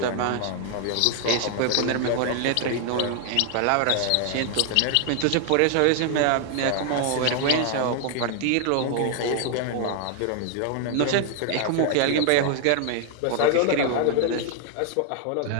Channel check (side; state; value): both; different; correlation 0.00